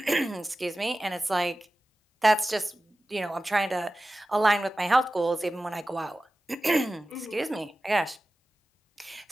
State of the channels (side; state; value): both; normal; correlation 0.95